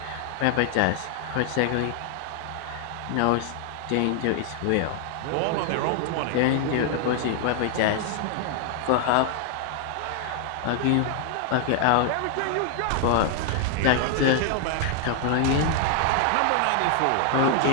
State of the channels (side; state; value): both; different; correlation 0.00